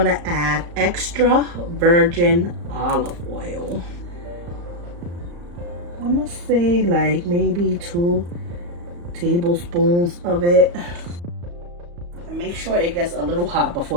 to add extra virgin olive oil. I'm gonna say like maybe 2 tablespoons of it. And make sure it gets a little hot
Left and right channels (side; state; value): left; late; 35 ms